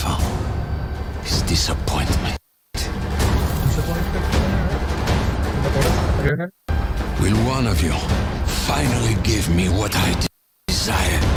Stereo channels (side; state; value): both; identical; correlation 1.00